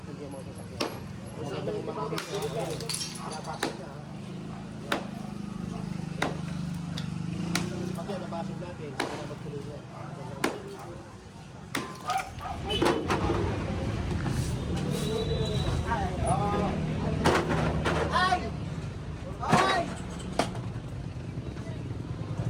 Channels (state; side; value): identical; both; correlation 1.00